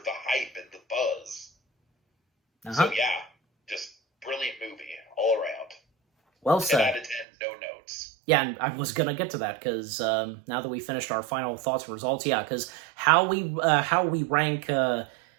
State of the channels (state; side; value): drops out; left; at 7.2 s